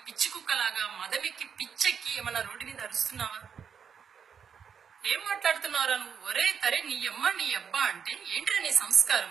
పిచ్చి కుక్కలాగా మదమెక్కి పిచ్చెక్కి ఏమన్నా రోడ్డు మీద అరుస్తున్నావా? ఏం మాట్లాడుతున్నారా నువ్వు? ఒరే తరే నీ అమ్మ నీ అబ్బా అంటే ఏంటిరా నీ సంస్కారం?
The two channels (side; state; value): left; quieter; 7.1 dB